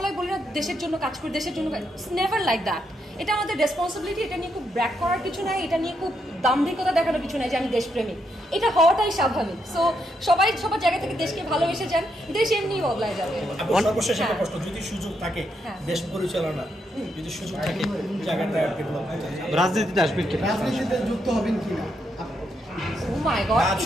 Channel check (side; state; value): both; normal; correlation 0.79